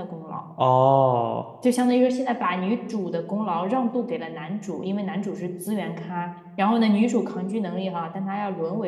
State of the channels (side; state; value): both; identical; correlation 1.00